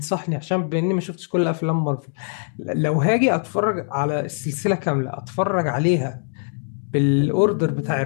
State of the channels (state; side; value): silent; right; digital silence